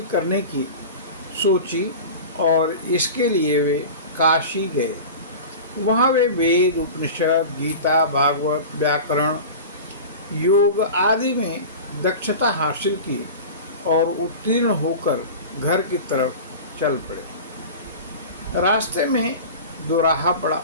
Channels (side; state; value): both; inverted; correlation -0.33